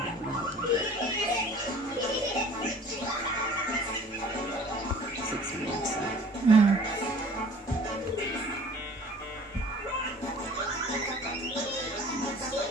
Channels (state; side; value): normal; both; correlation 0.48